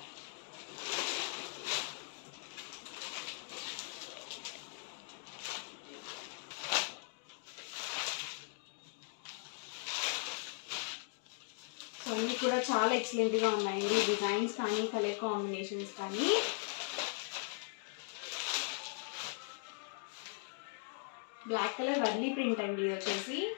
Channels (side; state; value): right; silent; 52 dB below the other